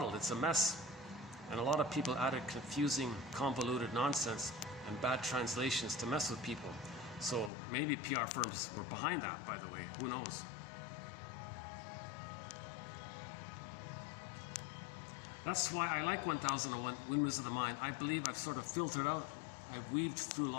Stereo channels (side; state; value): right; drops out; at 7.5 s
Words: it's a mess. And a lot of people added confusing, convoluted nonsense and bad translations to mess with people. So maybe PR firms were behind that, by the way. Who knows? That's why I like 1001 Windmills of the Mind. I believe I've sort of filtered out, I've weaved through a